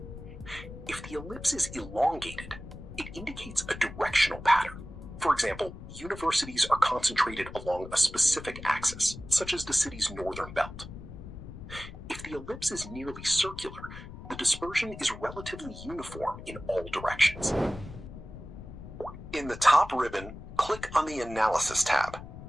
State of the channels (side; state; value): left; noise; rumble, 13 dB below the sound